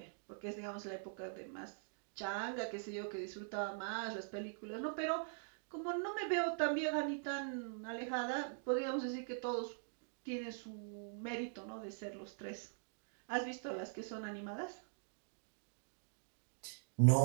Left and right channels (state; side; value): silent; left; digital silence